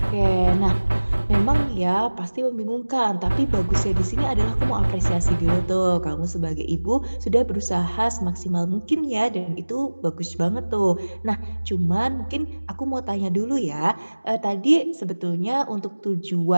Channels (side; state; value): both; inverted; correlation -1.00